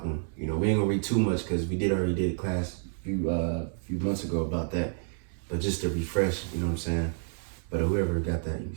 them. We ain't gonna read too much because we already did a class a few months ago about that, but just to refresh, you know what I'm saying. But whoever got that, you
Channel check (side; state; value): left; silent; 58 dB below the other